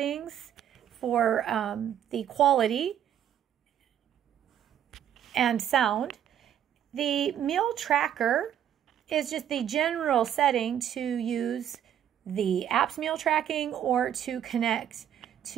for the quality and sound. The meal tracker is just the general setting to use the app's meal tracking or to connect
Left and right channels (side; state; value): left; quieter; 10.1 dB